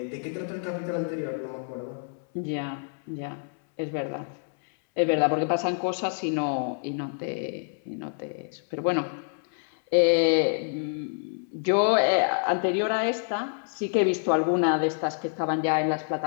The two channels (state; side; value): silent; right; 60 dB below the other